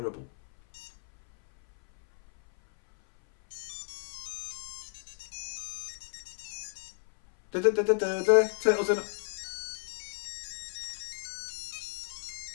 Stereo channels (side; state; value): right; silent; 56 dB below the other